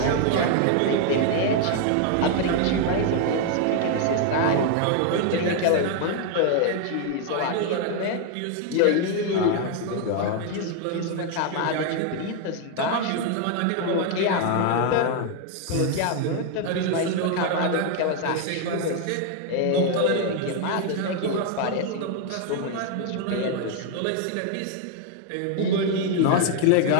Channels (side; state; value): both; different; correlation 0.00